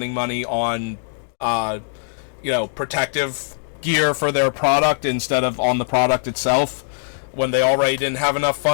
money on, you know, protective gear for their product instead of on the product itself, when they already didn't have enough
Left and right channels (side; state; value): right; silent; digital silence